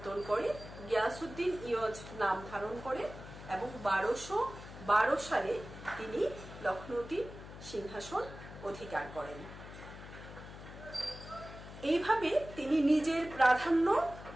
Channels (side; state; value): left; noise; hum, 14 dB below the sound